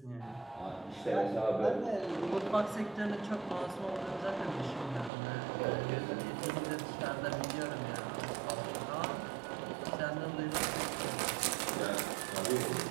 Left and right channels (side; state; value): left; drops out; at 5.1 s